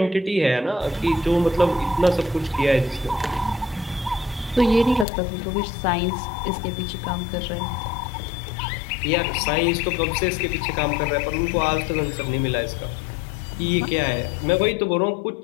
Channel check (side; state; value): right; drops out; at 5.1 s